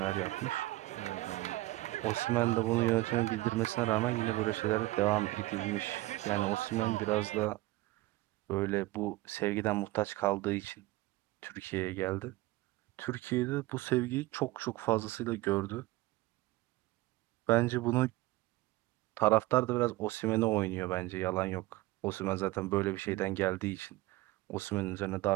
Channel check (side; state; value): left; quieter; 18.8 dB